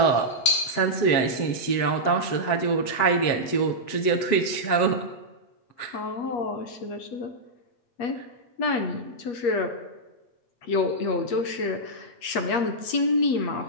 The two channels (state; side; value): late; right; 8.4 ms